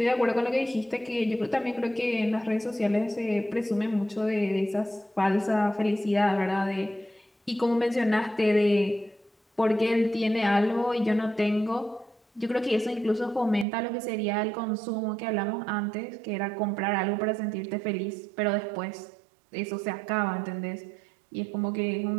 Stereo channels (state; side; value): drops out; left; at 13.7 s